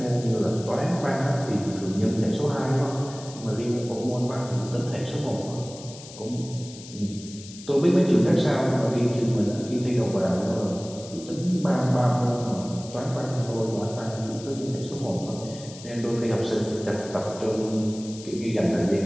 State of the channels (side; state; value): left; noise; hiss, 16 dB below the sound